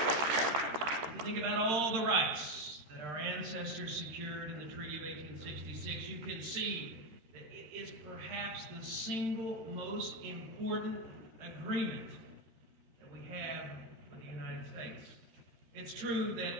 means. If you think about all the rights that our ancestors secured in the Treaty of 1866, you can see that it is perhaps the single most important agreement that we have with the United States. It's true that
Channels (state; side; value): late; left; 13 ms